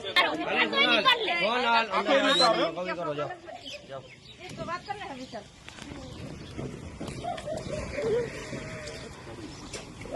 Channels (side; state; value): both; identical; correlation 1.00